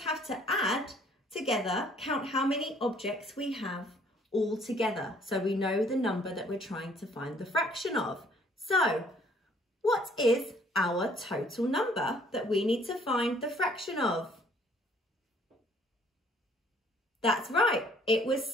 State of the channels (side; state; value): both; normal; correlation 0.60